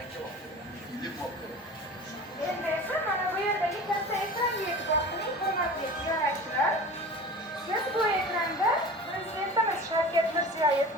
Endi esa mana bu yerdagi katta ekranga e'tibor qiling, hurmatli ziyoratchilar. Siz bu ekranda Prezidentimiz Shavkat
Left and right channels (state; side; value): normal; both; correlation 0.36